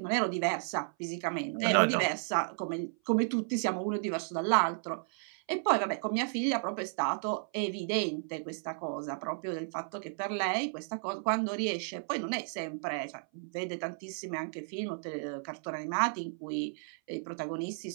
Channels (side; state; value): left; silent; 56 dB below the other